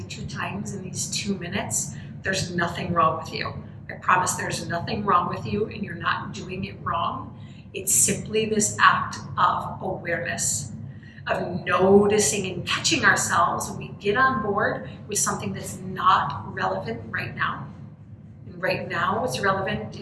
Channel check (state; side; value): identical; both; correlation 1.00